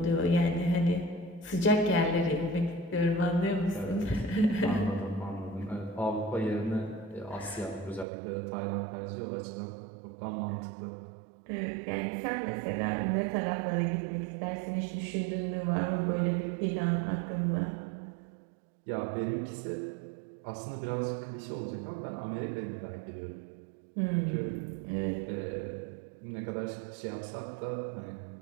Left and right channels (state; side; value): drops out; left; at 8.1 s